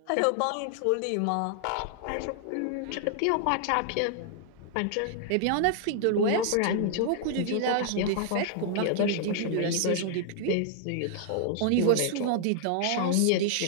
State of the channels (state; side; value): different; both; correlation -0.01